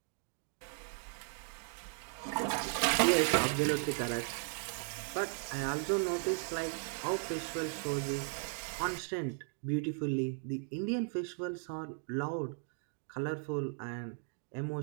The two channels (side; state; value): left; silent; 53 dB below the other